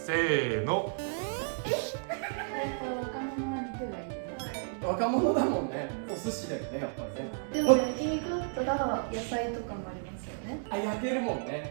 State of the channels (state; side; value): silent; left; digital silence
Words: ーの。若者は肉がいいね。若者だもんね。お寿司だよね、やっぱりね。でも焼肉だったら野菜とかもありますよね。あ、焼けるもん